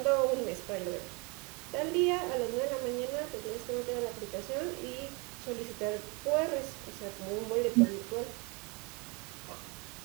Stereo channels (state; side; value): quieter; left; 30.2 dB